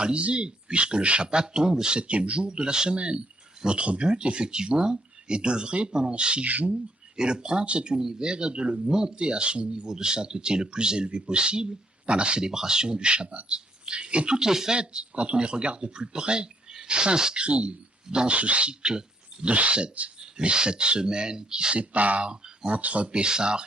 puisque le Shabbat tombe le 7e jour de la semaine. Notre but, effectivement, est d'œuvrer pendant 6 jours et de prendre cet univers et de le monter à son niveau de sainteté le plus élevé possible par la célébration du Shabbat. Et toutes les fêtes, quand on les regarde de plus près, s'inscrivent dans ce cycle de 7. Les 7 semaines qui séparent entre Pessah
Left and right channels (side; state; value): both; normal; correlation 0.69